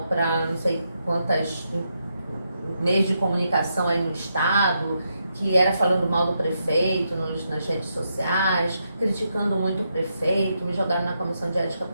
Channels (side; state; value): both; inverted; correlation -0.82